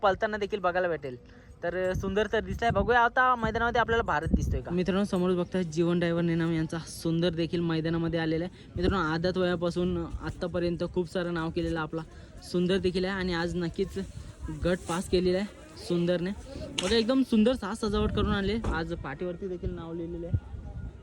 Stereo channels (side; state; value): both; identical; correlation 1.00